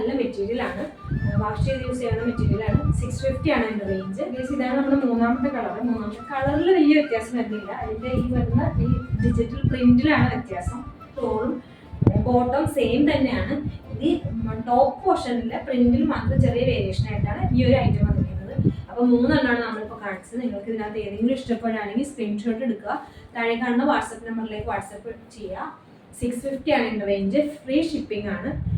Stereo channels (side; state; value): both; identical; correlation 1.00